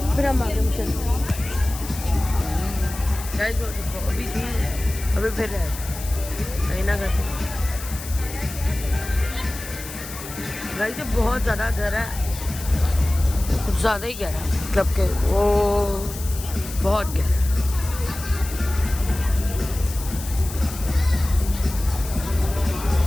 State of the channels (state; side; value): noise; left; hiss, 12 dB below the sound